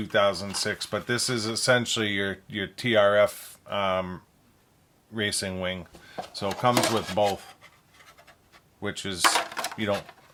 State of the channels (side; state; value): both; identical; correlation 1.00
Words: but this is essentially your TRF racing wing. So it comes with both, which is, I don't